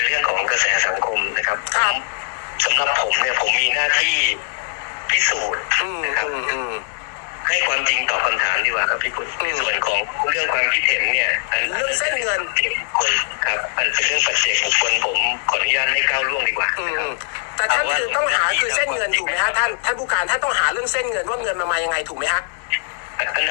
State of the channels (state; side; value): silent; right; 65 dB below the other